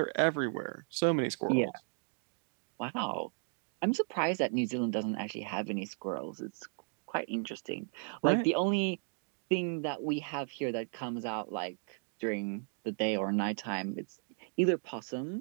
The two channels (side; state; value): left; silent; 54 dB below the other